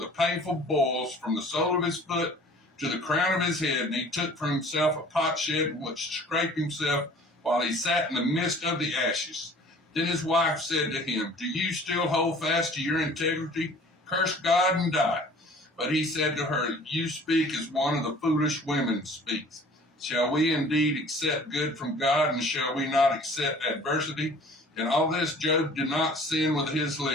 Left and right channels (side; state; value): both; normal; correlation 0.49